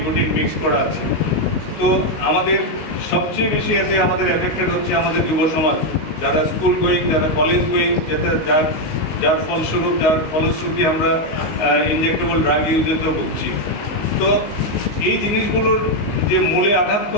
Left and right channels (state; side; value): late; right; 19 ms